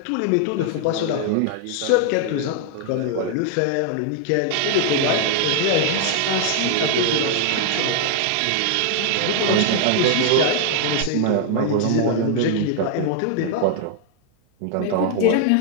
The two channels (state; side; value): different; both; correlation 0.00